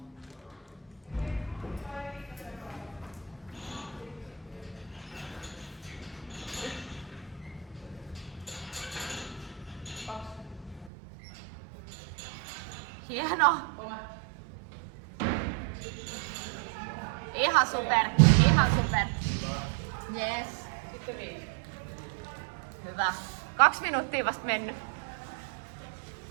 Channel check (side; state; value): left; drops out; at 10.9 s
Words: Hieno. Ihan super. Ihan super. Yes. Hyvä. 2 minuuttia vasta mennyt.